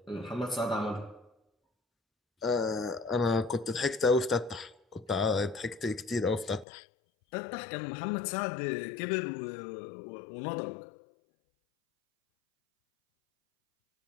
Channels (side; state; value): right; drops out; at 6.7 s